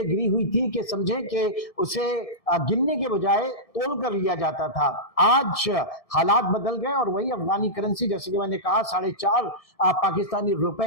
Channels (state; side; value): late; right; 1.7 ms